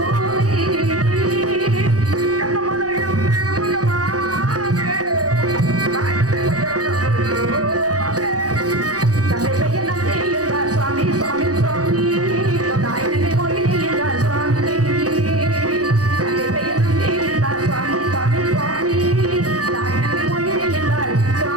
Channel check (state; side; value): late; left; 0.67 ms